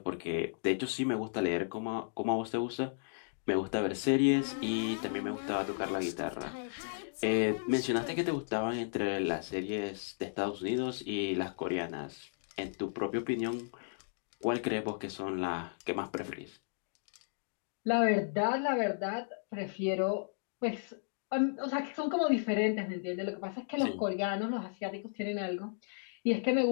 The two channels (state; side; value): silent; right; digital silence